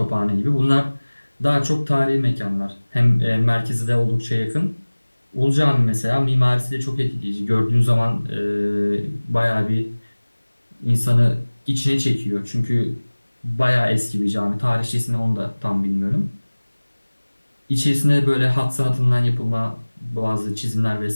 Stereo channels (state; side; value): inverted; both; correlation -1.00